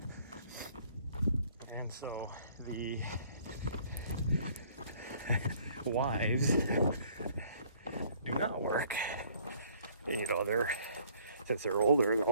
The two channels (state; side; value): inverted; both; correlation -0.59